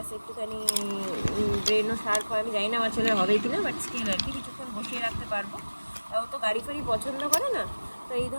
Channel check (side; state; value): both; inverted; correlation -1.00